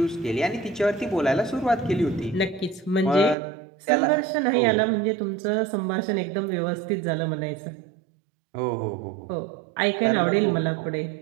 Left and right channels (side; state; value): left; drops out; at 3.4 s